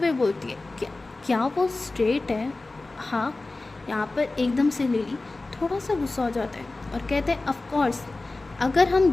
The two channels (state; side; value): quieter; right; 3.2 dB